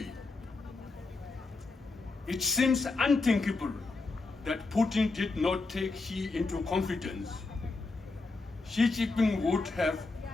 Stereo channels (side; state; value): right; quieter; 3.6 dB